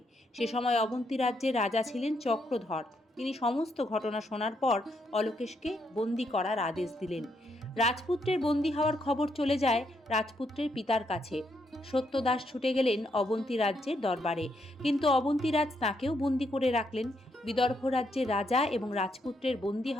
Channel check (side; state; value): both; normal; correlation 0.77